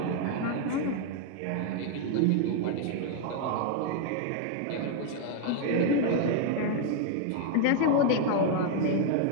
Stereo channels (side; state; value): both; different; correlation 0.00